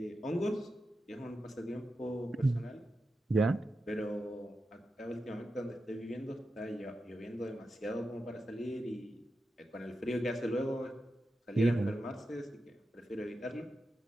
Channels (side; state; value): both; normal; correlation 0.89